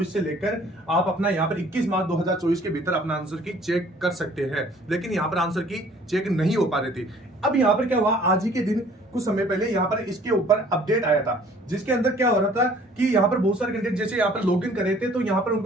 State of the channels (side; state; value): both; normal; correlation 0.55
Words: से लेकर आप अपना यहाँ पर 21 मार्च 2024 के भीतर अपना आंसर की चेक कर सकते हैं। लेकिन यहाँ पर आंसर की चेक नहीं हो पा रही थी। अब यहाँ पर क्या हुआ, आज ही के दिन कुछ समय पहले यहाँ पर इसके ऊपर अपडेट आया था, जिसके अंदर क्या हो रहा था कि यहाँ पर बहुत सारे कैंडिडेट जैसे यहाँ पर लॉगिन कर रहे थे तो यहाँ पर